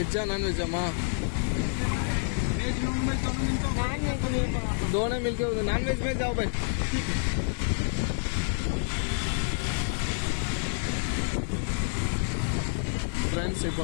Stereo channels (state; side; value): silent; right; digital silence